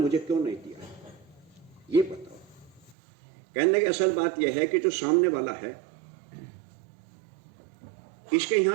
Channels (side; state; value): left; drops out; at 3.0 s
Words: क्यों नहीं दिया, ये बताओ। कहने की असल बात यह है कि जो सामने वाला है, इसके